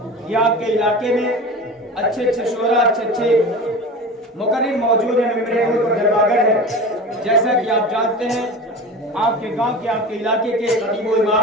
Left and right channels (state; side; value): normal; both; correlation 0.32